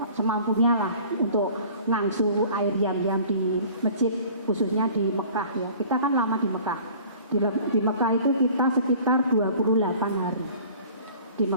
semampunya lah untuk ngangsu air jam-jam di masjid, khususnya di Mekah ya. Kita kan lama di Mekah. Di Mekah itu kita sekitar 28 hari di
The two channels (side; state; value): both; inverted; correlation -0.48